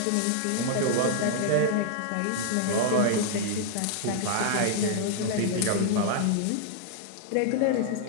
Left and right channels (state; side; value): different; both; correlation -0.01